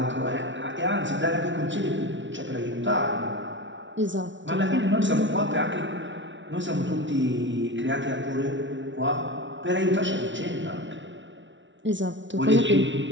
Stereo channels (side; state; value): left; late; 0.55 ms